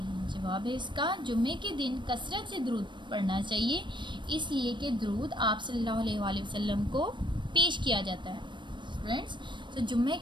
जवाब है इसका, जुम्मे के दिन कसरत से दरूद पढ़ना चाहिए, इसलिए कि दरूद आप सल्लल्लाहु अलैहि वसल्लम को पेश किया जाता है। फ्रेंड्स, तो जुम्मे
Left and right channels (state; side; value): late; left; 0.23 ms